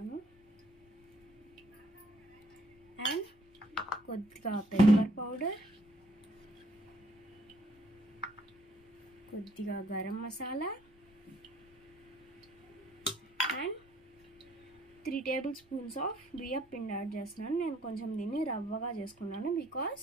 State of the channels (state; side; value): noise; left; rumble, 29 dB below the sound